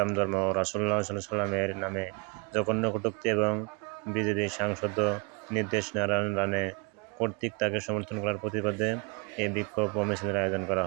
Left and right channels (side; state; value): left; quieter; 31.4 dB